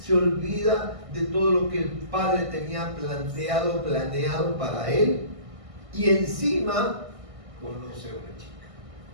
olvida de todo lo que el padre tenía planeado para él, y encima conoce a una chica.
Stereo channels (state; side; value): late; left; 1.6 ms